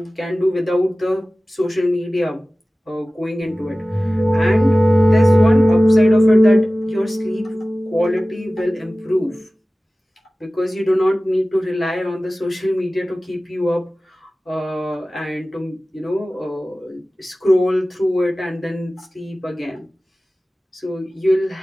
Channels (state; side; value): normal; both; correlation 0.97